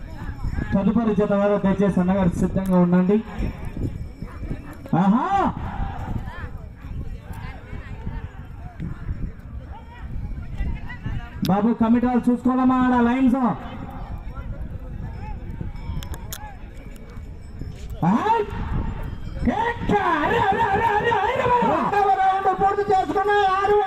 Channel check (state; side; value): identical; both; correlation 1.00